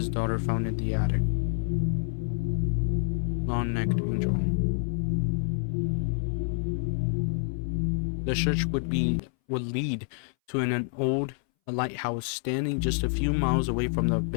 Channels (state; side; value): silent; right; 59 dB below the other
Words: daughter found in the attic. Long-Necked Angel. The search would lead to an old lighthouse standing just a few miles away from the